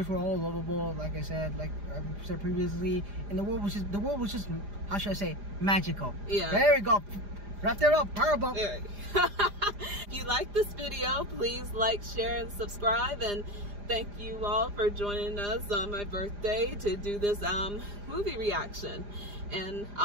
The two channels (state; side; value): late; left; 4.9 ms